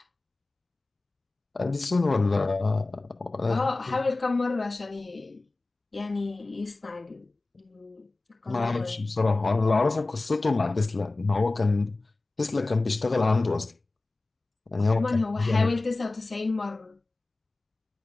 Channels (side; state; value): right; quieter; 3.2 dB